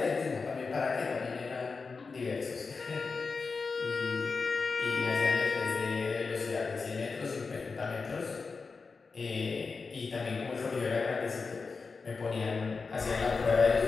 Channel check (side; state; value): right; quieter; 4.6 dB